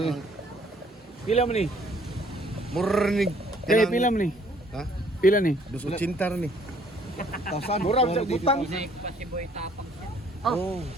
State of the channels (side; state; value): both; normal; correlation 0.61